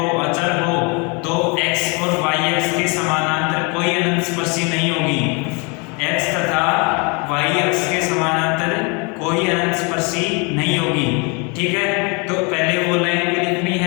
अचर हो, तो x और y x के समानांतर कोई अनंत स्पर्शी नहीं होगी। x तथा y x के समानांतर कोई अनंत स्पर्शी नहीं होगी। ठीक है, तो पहले वो लाइन भी लिखनी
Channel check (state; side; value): quieter; right; 31.6 dB